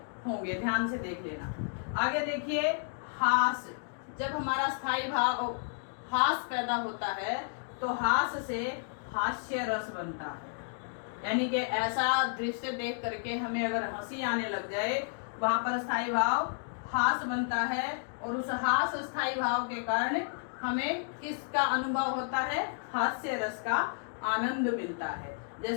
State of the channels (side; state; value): right; silent; digital silence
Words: होंगे, ध्यान से देख लेना। आगे देखिए हास। जब हमारा स्थायी भाव हास पैदा होता है तो हास से हास्य रस बनता है, यानी कि ऐसा दृश्य देख करके हमें अगर हंसी आने लग जाए वहां पर स्थायी भाव हास बनता है। और उस हास स्थायी भाव के कारण हमें किसका अनुभव होता है? हास्य रस का आनंद मिलता है।